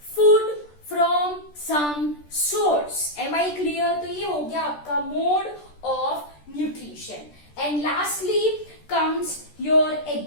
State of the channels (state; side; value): late; right; 13 ms